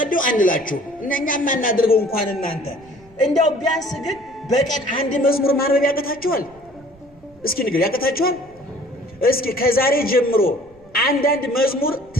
አንላችሁ እኛም ማናደርገው እንኳን እናንተ እንደው ቢያንስ ግን በቀን አንድ መዝሙር ማንበብ ያቀታችኋል? እስኪ ንገሩ ያቀታችኋል? እስኪ ከዛሬ ጀምሮ አንዳንድ መዝሙር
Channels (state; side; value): noise; right; rumble, 28 dB below the sound